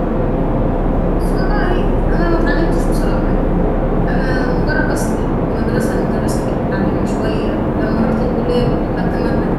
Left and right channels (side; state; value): both; identical; correlation 1.00